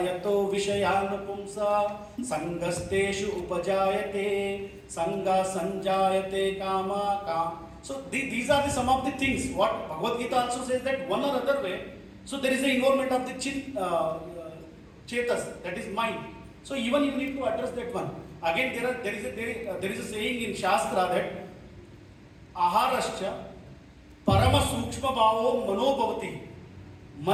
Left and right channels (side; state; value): both; identical; correlation 1.00